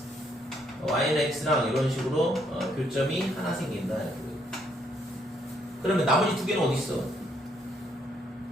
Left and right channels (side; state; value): both; normal; correlation 0.71